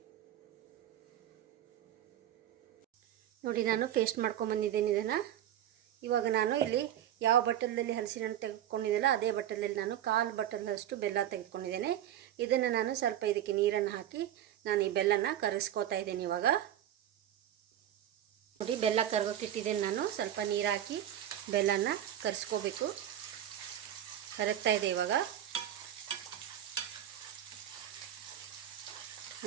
ನೋಡಿ, ನಾನು ಪೇಸ್ಟ್ ಮಾಡ್ಕೊಂಬಂದಿದ್ದೀನಿ ಇದನ್ನು. ಇವಾಗ ನಾನು ಇಲ್ಲಿ ಯಾವ ಬಟ್ಟಲಲ್ಲಿ ಹಲಸಿನ ಹಣ್ಣು ತೆಗೆದುಕೊಂಡಿದ್ದೆಲ್ಲ ಅದೇ ಬಟ್ಟಲಲ್ಲಿ ನಾನು 1/4 ಬಟ್ಟಲಷ್ಟು ಬೆಲ್ಲ ತೆಗೆದುಕೊಂಡಿದ್ದೇನೆ. ಇದನ್ನು ನಾನು ಸ್ವಲ್ಪ ಇದಕ್ಕೆ ನೀರನ್ನು ಹಾಕಿ ನಾನು ಈ ಬೆಲ್ಲನ ಕರಗಿಸ್ಕೋತಾ ಇದ್ದೀನಿ. ಇವಾಗ ನೋಡಿ, ಬೆಲ್ಲ ಕರಗೋಕ್ಕಿಟ್ಟಿದ್ದೇನೆ ನಾನು. ಸ್ವಲ್ಪ ನೀರು ಹಾಕಿ ಬೆಲ್ಲನ ಕರಗಿಸ್ಕೋಬೇಕು. ಕರಗ್ತಾ ಇದೆ ಇವಾಗ.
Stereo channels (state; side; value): quieter; left; 11.3 dB